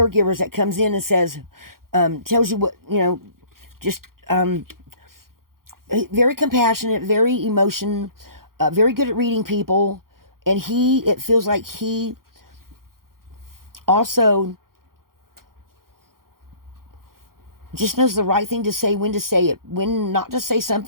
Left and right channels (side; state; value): left; late; 0.92 ms